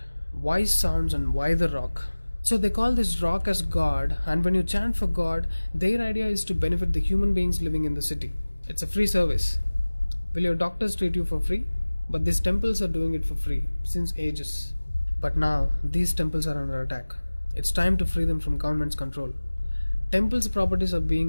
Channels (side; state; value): both; inverted; correlation -1.00